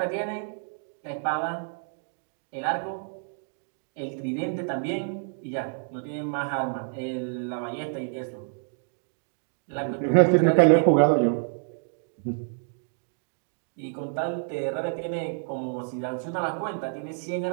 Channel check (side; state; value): left; silent; digital silence